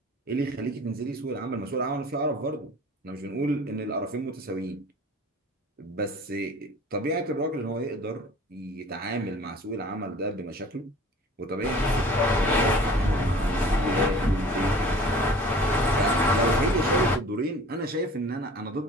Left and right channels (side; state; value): both; normal; correlation 0.45